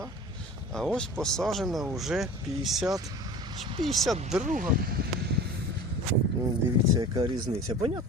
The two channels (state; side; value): normal; both; correlation 0.38